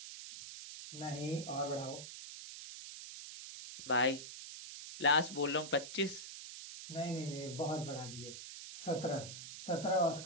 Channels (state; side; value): noise; right; hiss, 10 dB below the sound